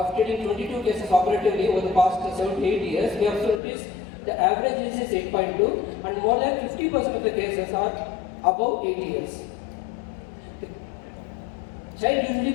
treating 22 cases operatively over the past 7 to 8 years, we have noticed the average age is 8.2 and more than 50% of the cases are above 8 years. The child usually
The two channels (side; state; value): right; drops out; at 3.6 s